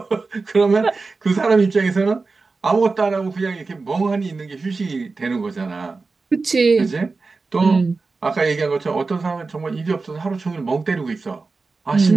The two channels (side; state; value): left; quieter; 4.0 dB